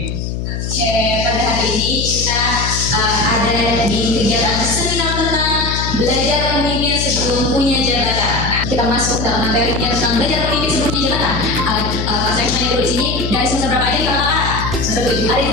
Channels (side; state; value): left; noise; hum, 4 dB below the sound